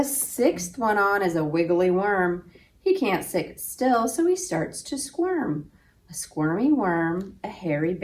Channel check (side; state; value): both; identical; correlation 1.00